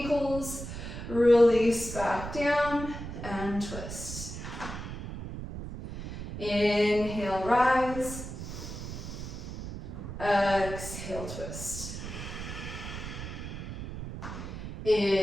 Release back down and twist. Inhale, rise. Exhale, twist.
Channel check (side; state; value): right; noise; rumble, 8 dB below the sound